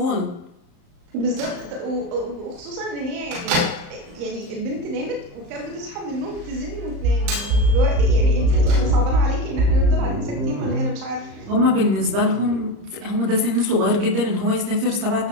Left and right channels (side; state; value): left; late; 34 ms